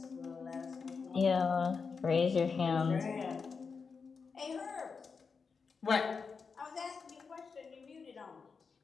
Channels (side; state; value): right; quieter; 5.3 dB